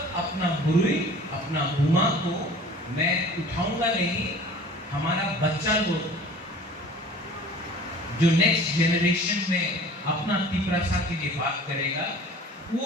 अपना गुरु, अपना बुमा को मैं उठाऊंगा नहीं, हमारा बच्चा लोग जो नेक्स्ट जेनरेशन में अपना तिपरासा के लिए बात करेगा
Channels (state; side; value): normal; both; correlation 0.46